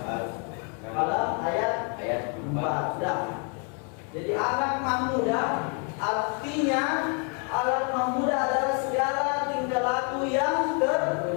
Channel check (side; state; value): right; quieter; 38.9 dB